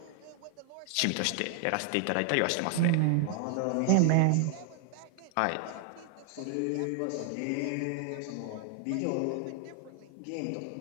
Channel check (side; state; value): both; different; correlation 0.00